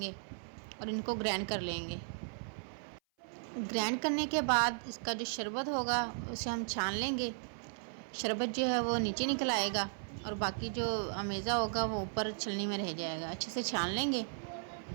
और इनको ग्राइंड कर लेंगे। ग्राइंड करने के बाद इसका जो शरबत होगा उसे हम छान लेंगे। शरबत जो है वो नीचे निकल आएगा और बाकी जो अमेज़ा होगा वो ऊपर छलनी में रह जाएगा। अच्छे से छान लेंगे।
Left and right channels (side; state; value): left; silent; 54 dB below the other